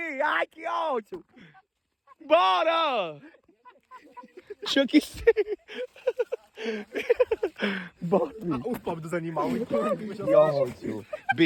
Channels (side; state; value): both; identical; correlation 1.00